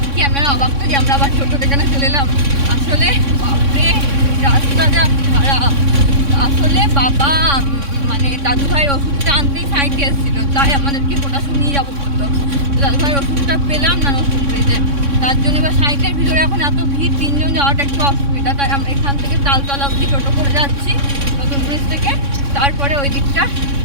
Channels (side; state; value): left; late; 3.6 ms